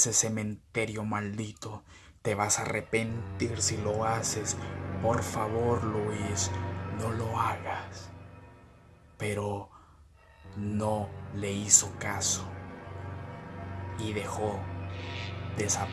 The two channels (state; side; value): identical; both; correlation 1.00